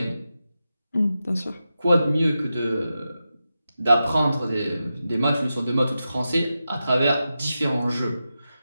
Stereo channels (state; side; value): inverted; both; correlation -0.91